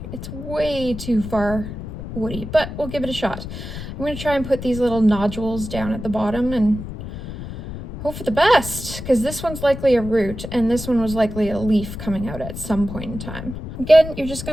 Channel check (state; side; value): noise; left; rumble, 9 dB below the sound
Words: It's way too far woody, but we'll give it a shot. I'm gonna try and put these little nodules down at the bottom and hope for the best, because this one's likely a root and this one was likely a leaf coming out at some point in time. Again, you're just